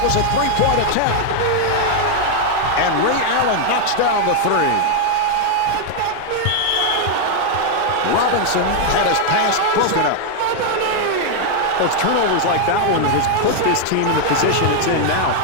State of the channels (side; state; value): both; different; correlation 0.00